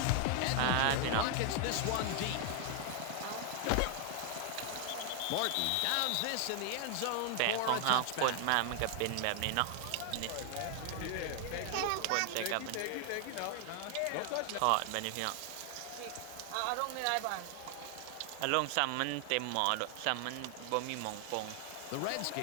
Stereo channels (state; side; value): different; both; correlation 0.00